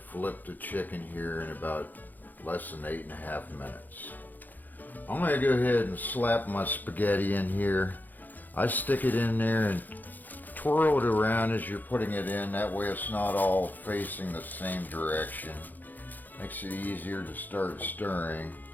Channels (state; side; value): late; right; 0.085 ms